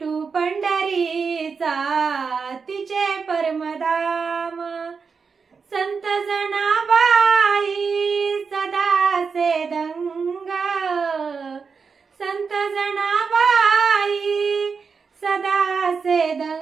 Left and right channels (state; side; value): quieter; left; 5.4 dB